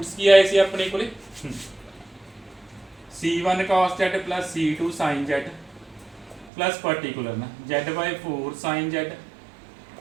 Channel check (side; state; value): left; drops out; at 6.5 s